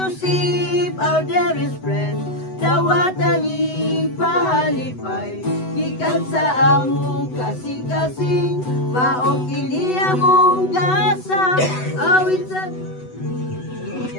our dearest friend. Dawatan ni pahalipay, gikan sa among kasing-kasing, maong kini among gasa, awit sa...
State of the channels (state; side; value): late; right; 8.0 ms